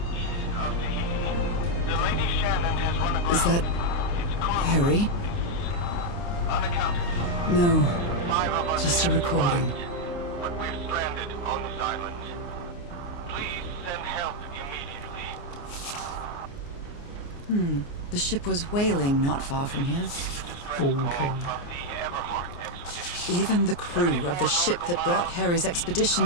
Is that Harry? No, just a recording. But we're stranded on this island. Please send help immediately. The ship was whaling not far from here. 高傾。 Even the crew of the ship that brought Harry's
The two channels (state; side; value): late; right; 29 ms